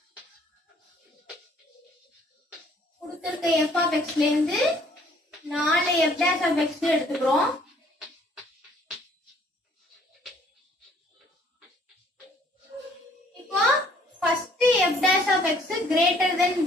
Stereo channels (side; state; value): both; normal; correlation 0.60